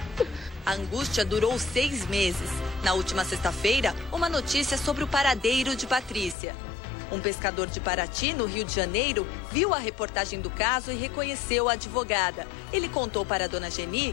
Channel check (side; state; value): right; drops out; at 6.4 s